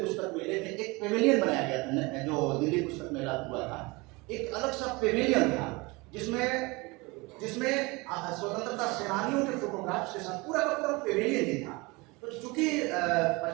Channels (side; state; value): left; quieter; 25.0 dB